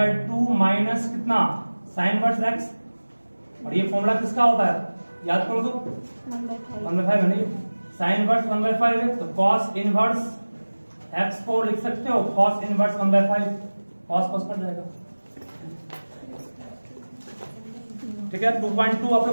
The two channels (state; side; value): inverted; both; correlation -1.00